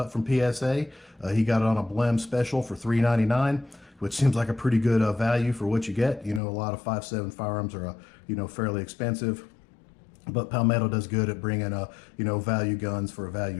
from PSA. He got it on a blem special for $3.99, which seems like a pretty good value for what you get. You know, a lot of 5.7 firearms are fairly expensive, but Palmetto does good at bringing value guns for a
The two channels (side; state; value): right; drops out; at 6.4 s